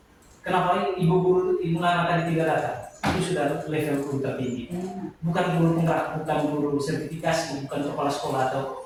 kenapa ibu guru, ibu Nana tadi tidak datang? Itu sudah level guru tertinggi. Bukan guru penggerak, bukan guru sertifikasi, bukan kepala sekolah atau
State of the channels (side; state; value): both; identical; correlation 1.00